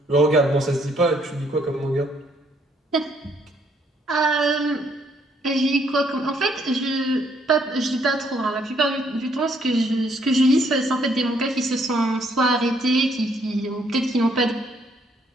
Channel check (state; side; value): normal; both; correlation 0.68